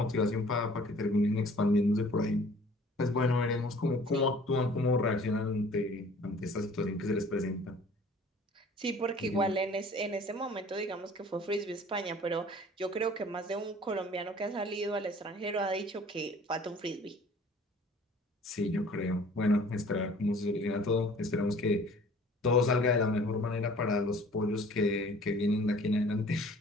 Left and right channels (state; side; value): normal; both; correlation 0.51